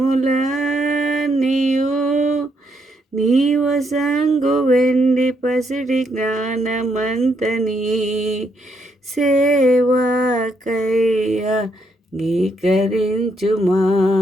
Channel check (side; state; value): both; normal; correlation 0.75